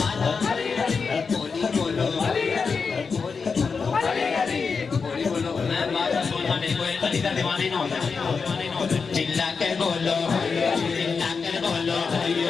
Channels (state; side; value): quieter; right; 5.2 dB